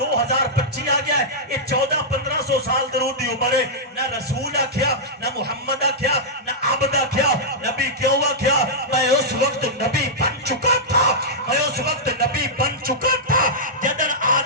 آ گیا ہے یہ 1400-1500 سال درود دی عمر ہے نہ رسول آکھیا نہ محمد آکھیا نہ عبد آکھیا نبی کیوں آکھیا میں اس وقت نبی بن چکا تھا میں اس وقت نبی بن چکا تھا جدن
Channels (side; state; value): both; normal; correlation -0.10